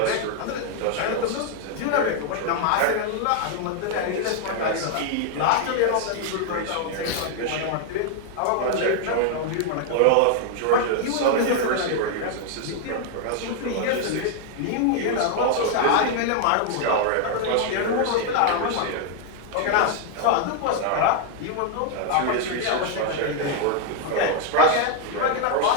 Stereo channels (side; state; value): both; different; correlation 0.00